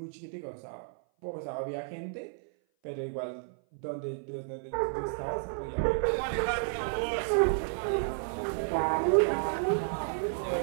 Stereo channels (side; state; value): left; silent; 56 dB below the other